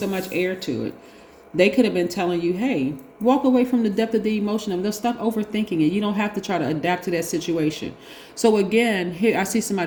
much air to it? They could have been telling you, hey, walk away from the depth of the emotion of it. Stop overthinking it. You don't have to try to adapt to that situation. So again, here I see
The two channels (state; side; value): identical; both; correlation 1.00